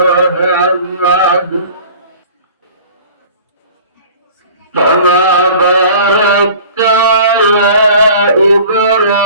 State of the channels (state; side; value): inverted; both; correlation -0.45